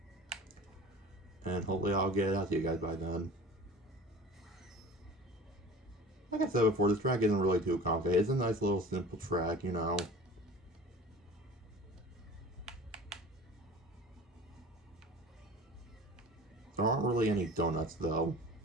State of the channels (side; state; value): both; normal; correlation 0.41